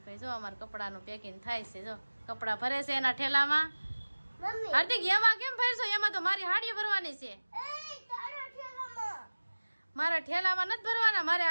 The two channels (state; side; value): inverted; both; correlation -1.00